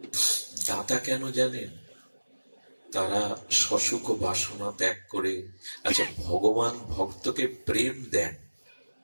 দাতা কেন জানেন? তারা সসুখ বাসনা ত্যাগ করে, আচ্ছা ভগবান ভক্তকে প্রেম দেন,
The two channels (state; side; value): inverted; both; correlation -1.00